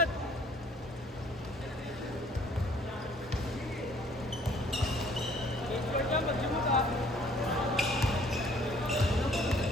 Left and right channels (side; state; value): both; normal; correlation 0.58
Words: Score ka, mag-jumot ah.